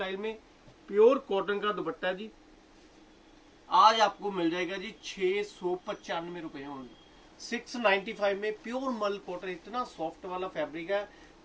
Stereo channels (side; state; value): both; identical; correlation 1.00